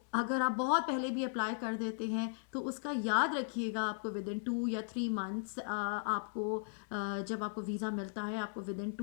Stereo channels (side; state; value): right; silent; 53 dB below the other